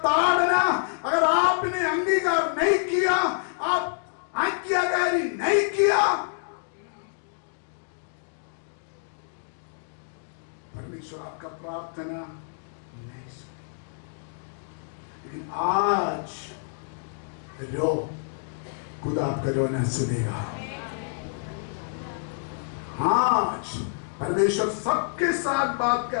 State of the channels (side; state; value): right; silent; digital silence